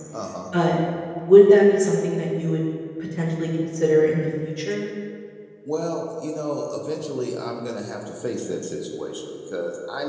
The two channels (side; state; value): both; identical; correlation 1.00